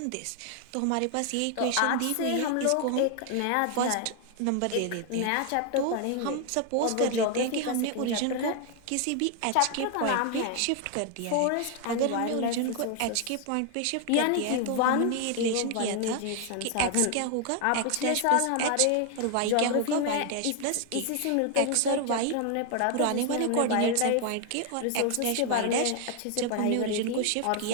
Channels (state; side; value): different; both; correlation 0.00